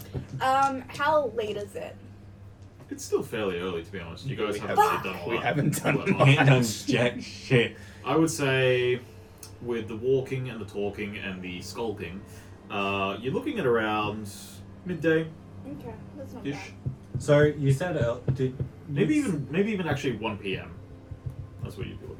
How late is it? It's still fairly early, to be honest. You guys We haven't haven't- really done a lot. We haven't done Well, much. Ain't done jack shit. I would say, with the walking and the talking and the skulking, you're looking at around midday-ish. Okay, that's not bad. So you said Maybe even actually 1 p.m. That's what you'd be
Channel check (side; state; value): both; identical; correlation 1.00